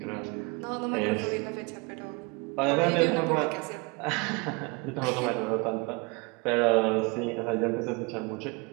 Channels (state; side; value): quieter; left; 28.6 dB